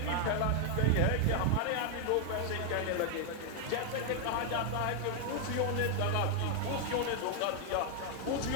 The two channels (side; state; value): both; different; correlation 0.00